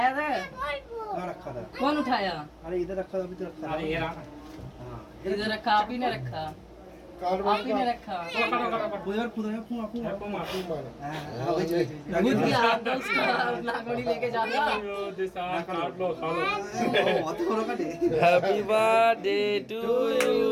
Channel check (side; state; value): both; identical; correlation 1.00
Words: था। कहाँ रखा था कौन उठाया? अरे इधर रखा था अभी तो रखा था अरे ये रहा हाँ इधर रखा, आप ही ने रखा, आप ही ने रखा। उधर खुद है फूं फूं हाँ वही खुद की हाथ दो उसका नागोड़ी लेके जाना। अत बड़ा काटे happy birthday to you